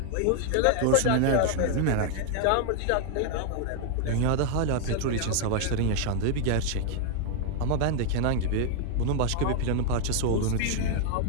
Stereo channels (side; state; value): both; different; correlation 0.00